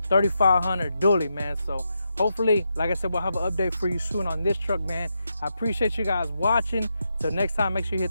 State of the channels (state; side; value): inverted; both; correlation -0.84